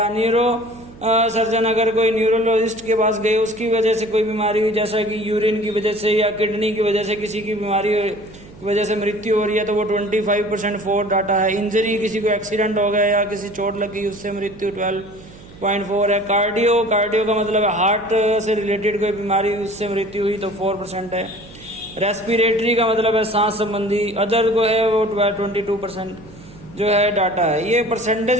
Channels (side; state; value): right; noise; hum, 20 dB below the sound